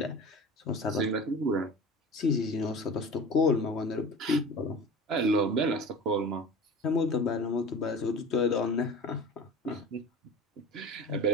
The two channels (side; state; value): both; normal; correlation 0.36